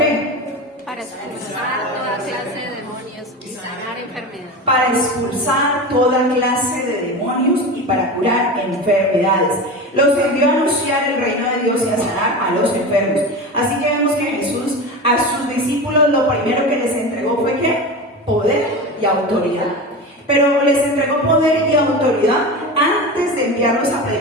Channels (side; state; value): both; normal; correlation 0.27